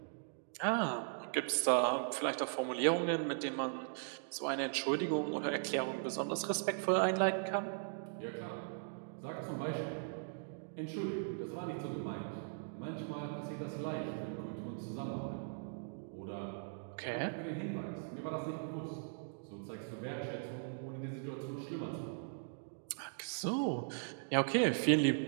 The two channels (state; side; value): silent; left; digital silence